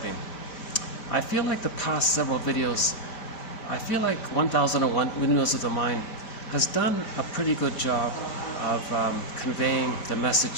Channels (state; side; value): late; right; 5.1 ms